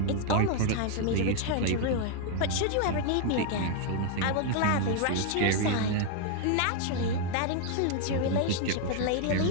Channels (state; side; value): different; both; correlation 0.00